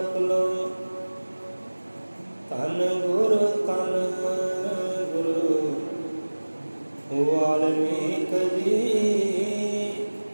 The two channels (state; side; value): inverted; both; correlation -1.00